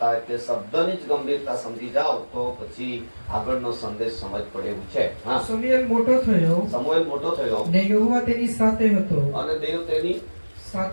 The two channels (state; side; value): inverted; both; correlation -1.00